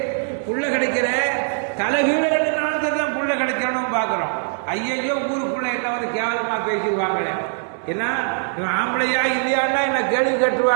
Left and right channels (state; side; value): silent; left; digital silence